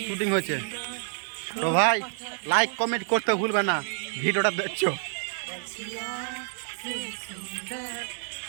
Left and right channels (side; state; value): left; silent; 59 dB below the other